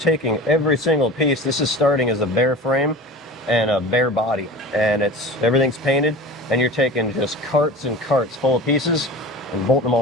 taking every single piece. This is starting as a bare frame and a bare body, and everything's painted, and you're taking just carts and carts full of pieces and bolting them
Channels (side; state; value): both; normal; correlation 0.35